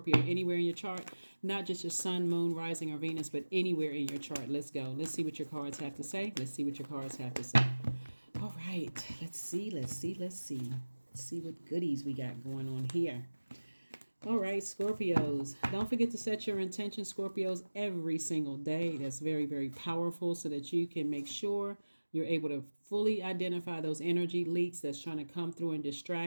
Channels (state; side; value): inverted; both; correlation -1.00